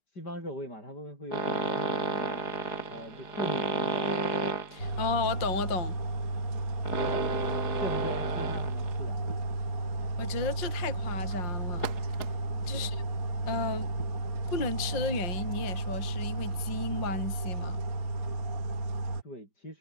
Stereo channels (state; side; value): late; right; 5.6 ms